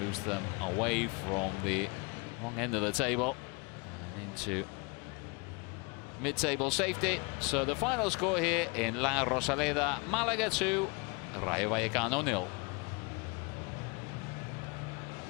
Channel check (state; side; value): quieter; right; 30.2 dB